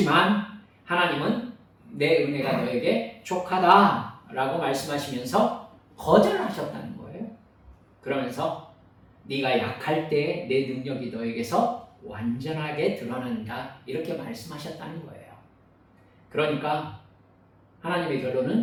하나님은 내 은혜가 너에게 족하다라고 말씀하시면서 거절하셨다는 거예요. 그러면서 네가 약할 때 내 능력이 너에게서 완전하게 드러난다 이렇게 말씀하셨다는 거예요. 그러니까 하나님의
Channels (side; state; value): both; identical; correlation 1.00